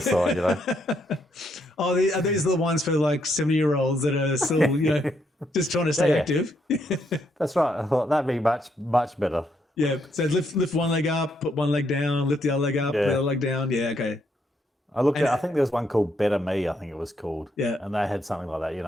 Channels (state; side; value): normal; both; correlation 0.75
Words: side, you know. Oh, these are the ones for like 70-year-olds that are still, just trying to stay Yeah. active. That's right. I thought that'd be much better. Yeah. So lift one leg up, put one leg down, lift the other leg up, put the other leg down. Yeah. Okay. I think there was one called Better Me, I think it was called. Yeah. And they had something like that. You